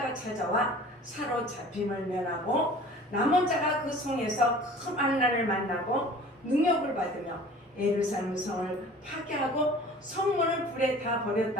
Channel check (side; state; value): both; normal; correlation 0.46